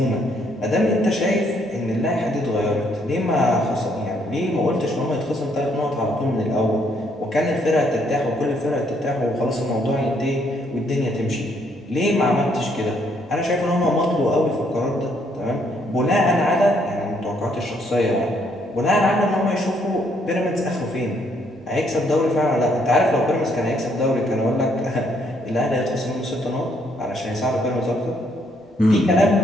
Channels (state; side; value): normal; both; correlation 0.70